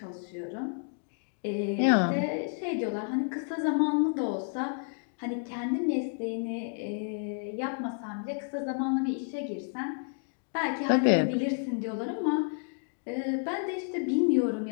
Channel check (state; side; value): silent; right; 57 dB below the other